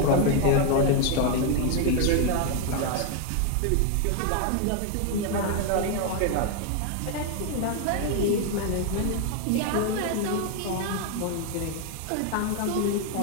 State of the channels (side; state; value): both; different; correlation 0.01